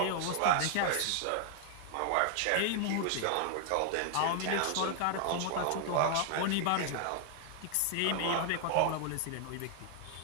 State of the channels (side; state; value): both; different; correlation 0.00